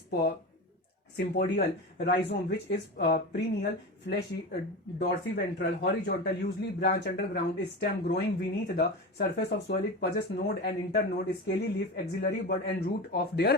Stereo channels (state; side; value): normal; both; correlation 0.25